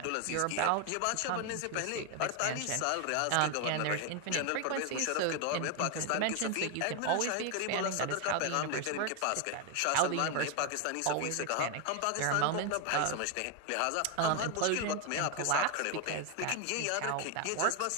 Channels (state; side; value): different; both; correlation 0.01